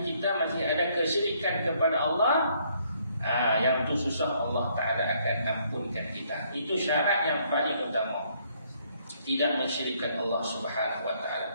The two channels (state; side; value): inverted; both; correlation -0.68